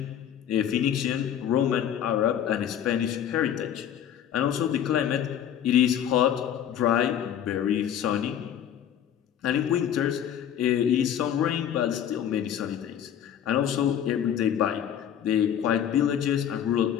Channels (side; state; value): right; quieter; 9.7 dB